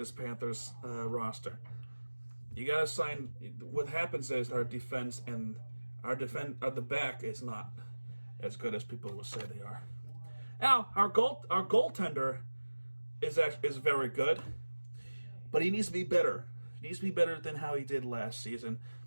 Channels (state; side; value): inverted; both; correlation -1.00